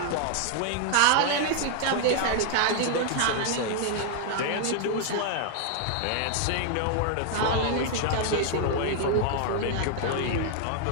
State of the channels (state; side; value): different; both; correlation 0.00